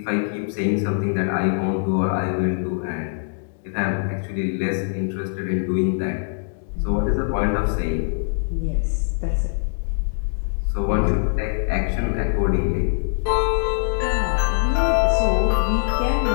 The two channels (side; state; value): right; silent; digital silence